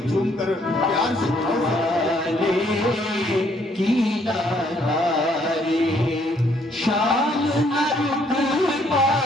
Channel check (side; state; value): both; normal; correlation 0.67